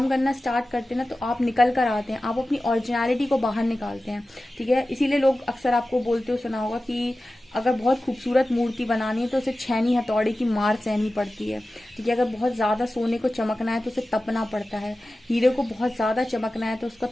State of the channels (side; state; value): both; normal; correlation 0.95